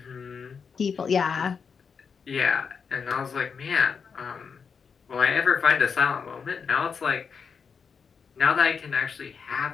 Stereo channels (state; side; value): quieter; right; 6.0 dB